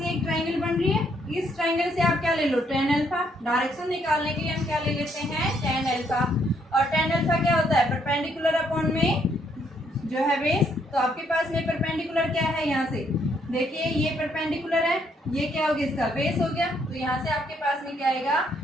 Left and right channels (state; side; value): normal; both; correlation 0.71